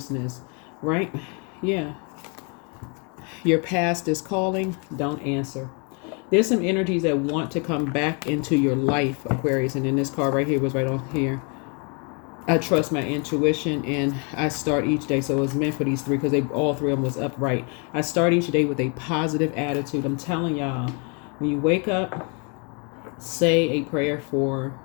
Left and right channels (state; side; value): quieter; right; 35.4 dB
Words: right? Yeah. Your past is calling. Don't answer. There's some energies that want to come back into your life, Aquarius. And then this card right here was right on here. I trust my intuition and I start each day. So it was meant for these three because all three of them was upright. I start each day with a positive attitude. I'm telling y'all, when you wake up, say a prayer for